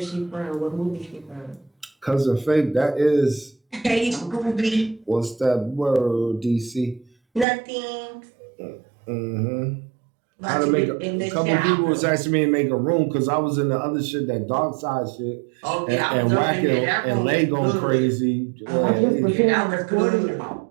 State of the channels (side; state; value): left; drops out; at 7.5 s